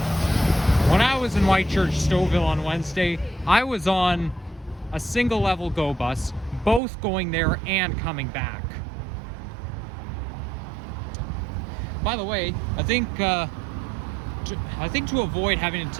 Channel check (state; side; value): drops out; left; at 6.8 s